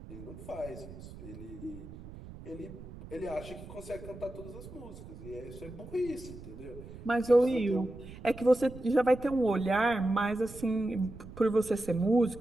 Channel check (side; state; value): right; noise; rumble, 14 dB below the sound